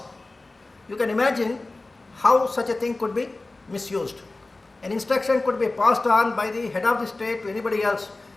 You can imagine how such a thing could be misused. An instruction could be passed on by the head of the state to anybody else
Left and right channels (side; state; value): right; quieter; 3.1 dB